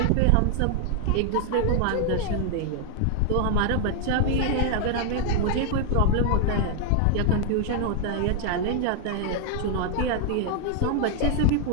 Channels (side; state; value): both; different; correlation 0.00